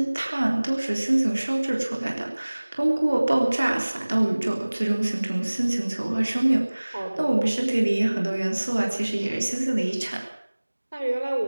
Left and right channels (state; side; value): inverted; both; correlation -1.00